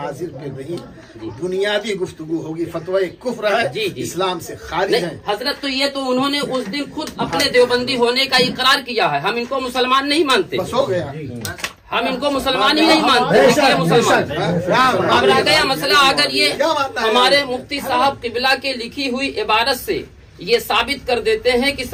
पे नहीं, बुनियादी गुफ्तगू होगी। फतवा कुफ्र है, जी, जी। इस्लाम से खारिज नहीं है। हजरत, तो ये तो उन्होंने उस दिन खुद अपने देवबंदी होने का इकरार किया है। हम इनको मुसलमान नहीं मानते, बस हो गया। हम इनको मुसलमान ही नहीं मानते, इसलिए मुसलमान। अब रह गया मसला, अगर ये क्या मानना है? हमारे मुफ्ती साहब किबला के लिखी हुई इबारत से ये साबित कर देते हैं कि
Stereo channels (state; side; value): identical; both; correlation 1.00